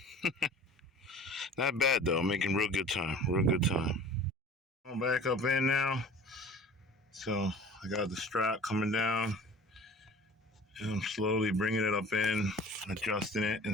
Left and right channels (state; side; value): normal; both; correlation 0.44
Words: Not bad though, making real good time. Real good time. Going back up in now. So I got the strap coming down, and I'm slowly bringing it up in, adjusting it